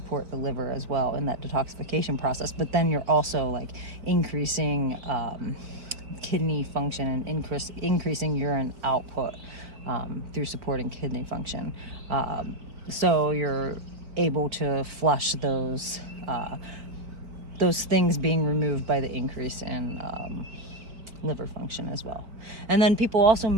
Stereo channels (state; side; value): late; left; 4.5 ms